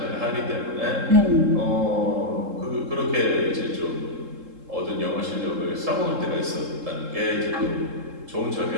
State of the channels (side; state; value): left; late; 3.7 ms